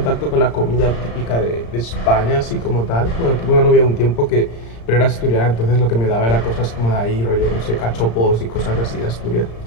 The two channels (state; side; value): late; right; 35 ms